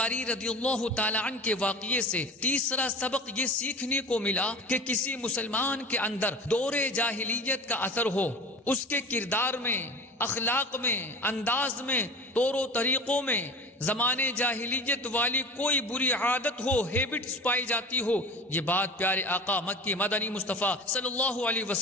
رضی اللہ تعالی عنہ کے واقعے سے تیسرا سبق یہ سیکھنے کو ملا کہ کسی مسلمان کے اندر دور جاہلیت کا اثر ہو، اس کے کردار میں، اخلاق میں، انداز میں، طور و طریقوں میں زمانے جاہلیت والی کوئی بری عادت ہو، ہیبٹس پائی جاتی ہو، یہ بات پیارے آقا مکی مدنی مصطفیٰ صلی اللہ علیہ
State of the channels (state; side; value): normal; both; correlation 0.36